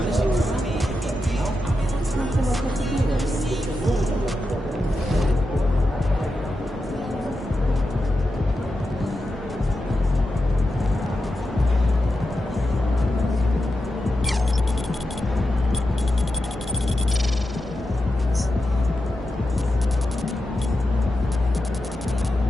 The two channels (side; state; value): both; normal; correlation 0.89